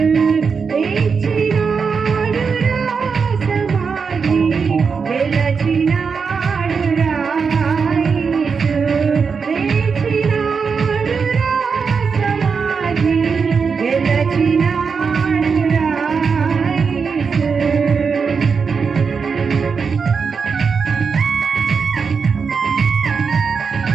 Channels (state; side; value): quieter; left; 5.6 dB